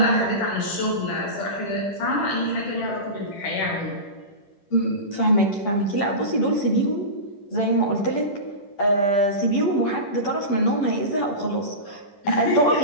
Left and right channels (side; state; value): right; late; 10 ms